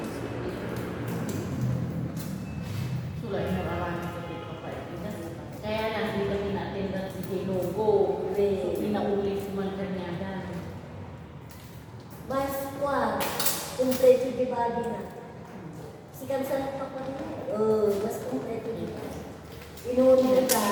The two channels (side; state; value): both; identical; correlation 1.00